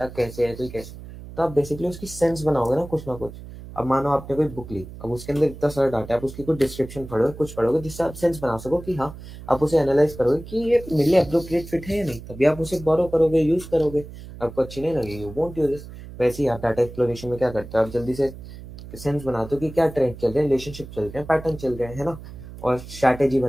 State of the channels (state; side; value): noise; right; hum, 14 dB below the sound